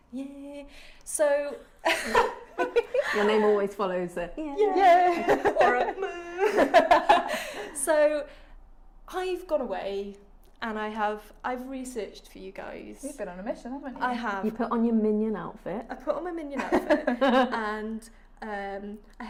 Yeah. So... Your name always follows the yeah. Or a So I've gone away and I've researched for you guys. You've been on a mission, haven't you? I have. You put on your minion outfit. I put on my minion outfit and I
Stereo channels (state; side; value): identical; both; correlation 1.00